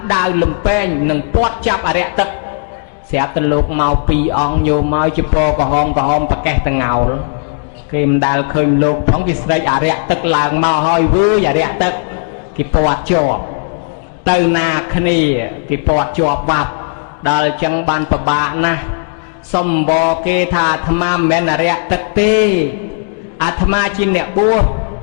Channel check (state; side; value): silent; right; digital silence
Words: ដាវលំពេងនឹងពាត់ចាប់អរិយទឹកស្រាប់តែលោកមកពីរអង្គញោមមកជាពណ៌ក្រហមប្រកេះតងោលគេមិនដែលឃើញលោកផងគេស្រែកអរិយទឹកឡើងមកហើយវើយអរិយទឹកគេពាត់ជាប់ទៅណាគ្នាគេពាត់ជាប់បាត់ដល់អញ្ចឹងបានពិបាកណាស់សំបគេថាអាត្មាមិនមែនអរិយទឹកទេអាត្មាជាអ្នកបួស